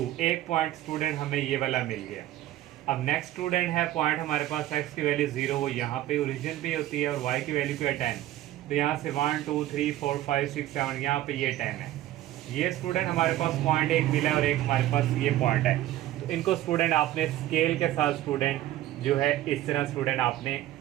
एक पॉइंट स्टूडेंट हमें ये वाला मिल गया। अब नेक्स्ट स्टूडेंट है पॉइंट हमारे पास x की वैल्यू 0, वो यहाँ पे ओरिजिन पे होती है और y की वैल्यू क्या है 10। तो यहाँ से 1 2 3 4 5 6 7 यहाँ पे ये 10 है। ये स्टूडेंट हमारे पास पॉइंट एक मिला और एक हमारे पास ये पॉइंट है। तो इनको स्टूडेंट आपने स्केल के साथ स्टूडेंट जो है इस तरह स्टूडेंट आपने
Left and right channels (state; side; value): quieter; left; 14.1 dB